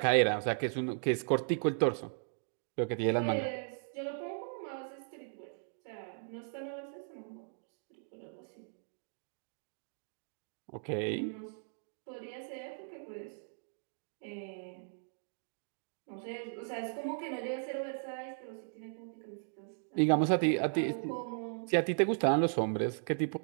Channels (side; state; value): left; silent; digital silence